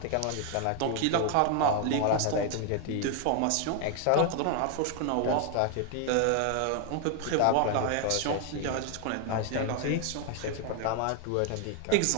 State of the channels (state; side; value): different; both; correlation 0.00